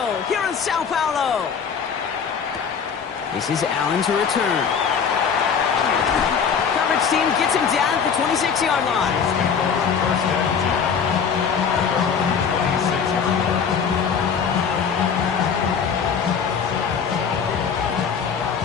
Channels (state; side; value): quieter; right; 6.7 dB